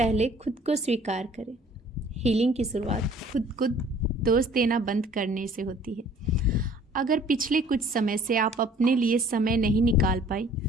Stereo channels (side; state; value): both; normal; correlation 0.54